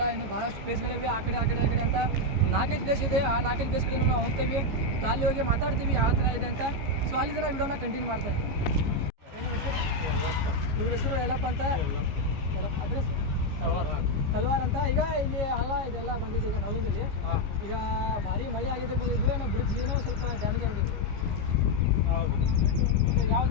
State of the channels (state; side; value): late; left; 15 ms